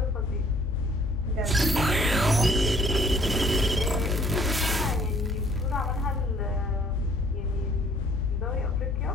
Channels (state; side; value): normal; both; correlation 0.59